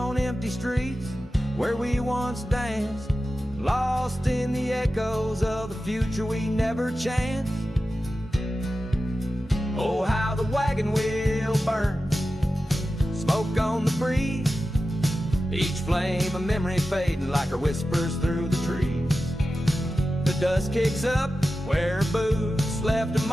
empty streets where we once danced, lost in the echoes of the future we never chanced. Oh, how the wagon wheel burns, smoke on the breeze, each flame a memory fading like her whispers through the trees. The dust kicks up where her boots left a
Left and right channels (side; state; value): both; normal; correlation 0.93